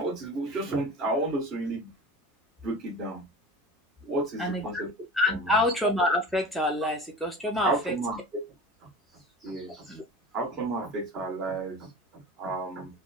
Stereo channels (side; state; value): both; normal; correlation 0.35